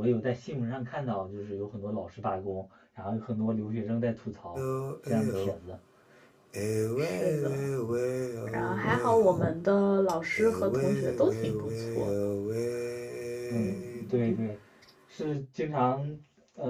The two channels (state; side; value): identical; both; correlation 1.00